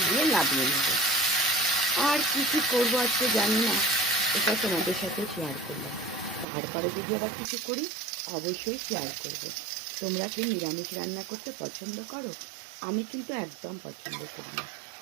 দিয়ে নামিয়ে নেবো। আর কি কি করবো আজকে জানি না, এটা তোমাদের সাথে শেয়ার করলাম। তারপরে যদি আবার কিছু করি অবশ্যই শেয়ার করব। তোমরা কি নিরামিষ রান্না করতে পছন্দ করো? আমি কিন্তু একদম পছন্দ করি না,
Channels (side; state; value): left; drops out; at 6.5 s